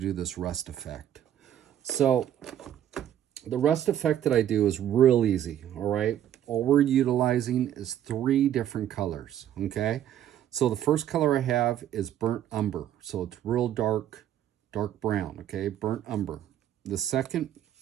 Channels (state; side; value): quieter; left; 11.0 dB